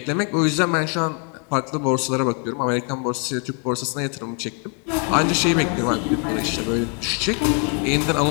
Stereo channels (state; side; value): quieter; right; 37.9 dB